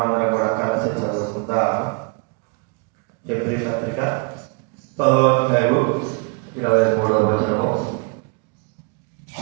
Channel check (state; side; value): quieter; left; 34.5 dB